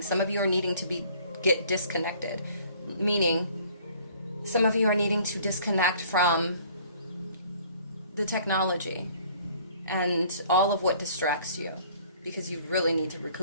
Some of you are needing to get disconnected, meaning some of you are needing to disconnect from the technology and all of what distracts you, because you really need to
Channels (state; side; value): inverted; both; correlation -0.55